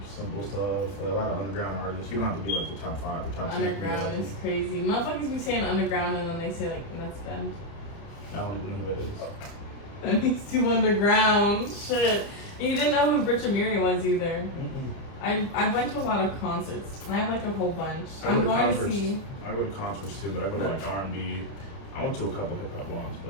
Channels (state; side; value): late; right; 30 ms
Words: simple stuff, like a lot of underground artists. You don't have to be like the top 5 or top 10. Underground is crazy. Motherfuckers be saying underground and then they say like nuts bend. I don't even know who that is. And he's too underground. Shit. And you didn't know who Rich Amiri was either. I went to a lot of concerts. I have like a whole bunch. I go I'm to going to concerts. see. I go to concerts too, but I go to like R&B. I went to a couple hip hop ones,